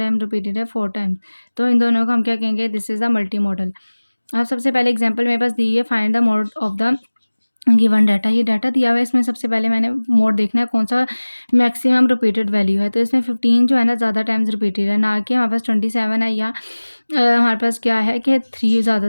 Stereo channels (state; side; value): inverted; both; correlation -1.00